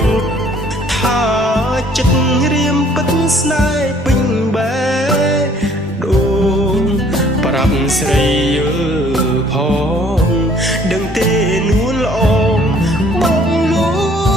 ថាចិត្តរៀមពិតស្នេហ៍ពេញបែដូងប្រាប់ស្រីយល់ផងដឹងទេនួនល្អងបងលួ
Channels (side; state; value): both; normal; correlation 0.58